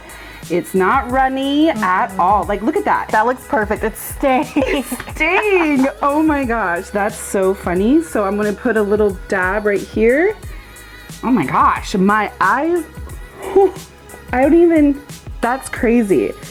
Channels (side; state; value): both; identical; correlation 1.00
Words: It's not runny at all. Like, look at that. That looks perfect. It's staying. Dang. Oh my gosh, that's so funny. So I'm gonna put a little dab right here. Oh my gosh, my eyes, I don't even, that's crazy.